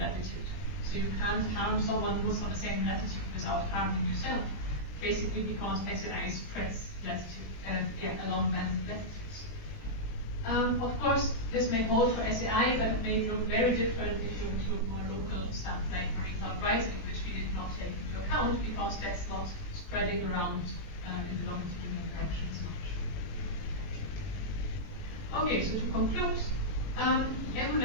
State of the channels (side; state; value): right; late; 19 ms